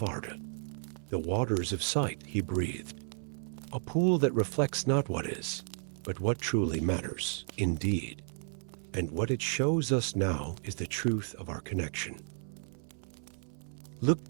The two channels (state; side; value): silent; left; 56 dB below the other